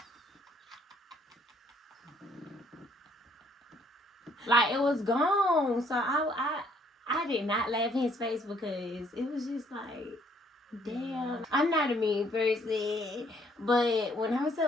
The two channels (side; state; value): both; normal; correlation 0.65